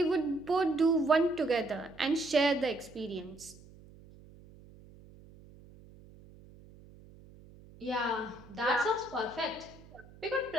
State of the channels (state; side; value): noise; right; hum, 22 dB below the sound